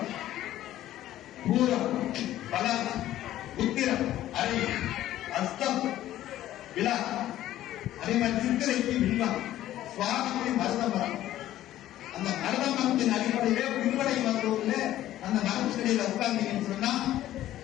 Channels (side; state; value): right; quieter; 13.5 dB